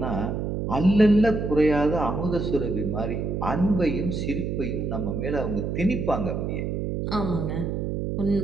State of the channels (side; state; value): right; noise; hum, 2 dB below the sound